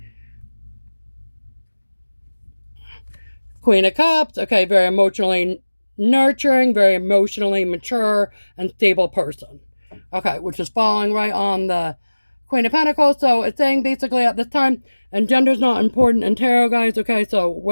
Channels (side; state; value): both; inverted; correlation -1.00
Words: Queen of Cups, okay, very emotionally nurturing, very emotionally mature and stable person. Okay, which is falling right on the Queen of Pentacles. So it's saying basically at this time, and gender's not important in tarot, guys, okay? So